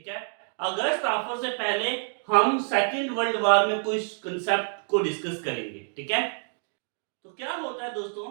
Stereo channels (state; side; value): silent; left; 58 dB below the other